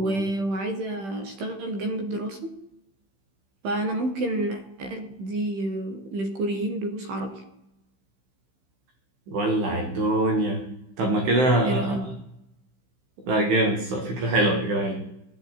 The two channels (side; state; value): left; late; 15 ms